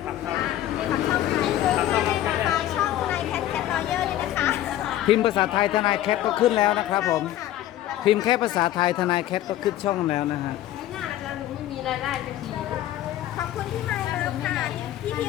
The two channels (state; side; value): quieter; right; 13.2 dB